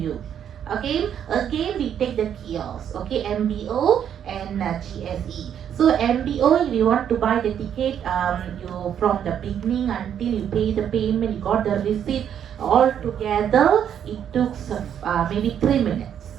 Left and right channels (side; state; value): left; quieter; 9.1 dB